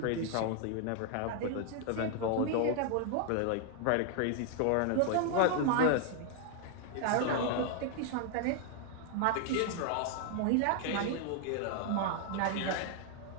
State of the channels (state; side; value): different; both; correlation 0.00